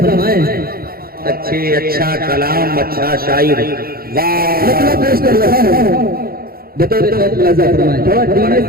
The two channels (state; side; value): late; left; 0.44 ms